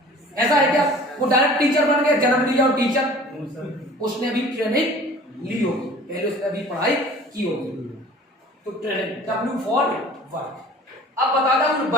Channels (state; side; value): normal; both; correlation 0.46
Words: ऐसा है क्या? वो डायरेक्ट टीचर बन गया, जन्म लिया और टीचर? उसने भी ट्रेनिंग ली होगी, पहले उसने भी पढ़ाई की होगी। तो ट्रेनिंग, W फॉर वर्क। अब बताता हूं